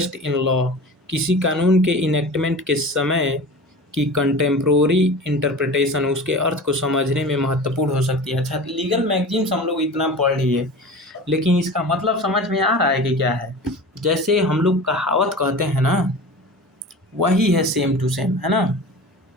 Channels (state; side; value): normal; both; correlation 0.35